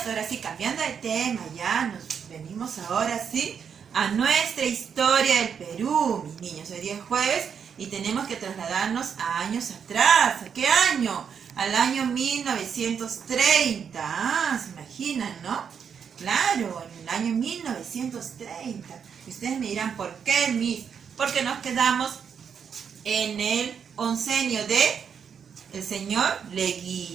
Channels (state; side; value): quieter; left; 7.2 dB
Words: ahora sí, cambiando de tema, ya nos venimos ahora sí a nuestra historia del Perú, mis niños. Hoy día es jueves y tenemos que trasladarnos a años atrás. ¿A qué año? Al año 1930. Ah, se imaginan, ¿no? Claro, en el año 1930. Y ustedes me dirán, ¿por qué, Miss? Porque nos quedamos en el oncenio de el señor